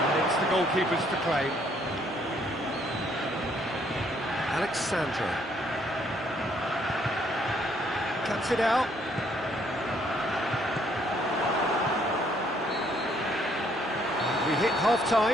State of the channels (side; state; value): both; normal; correlation 0.67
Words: And it's the goalkeepers to claim. Alexandro. Cuts it out. We hit